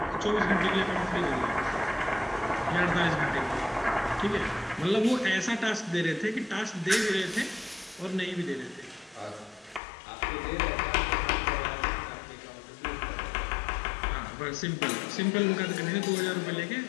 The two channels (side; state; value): right; drops out; at 9.8 s